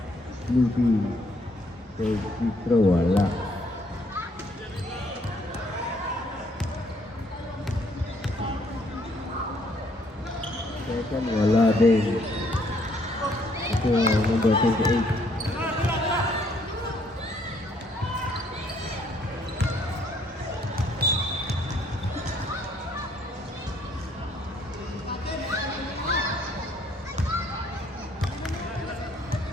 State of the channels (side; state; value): both; normal; correlation 0.66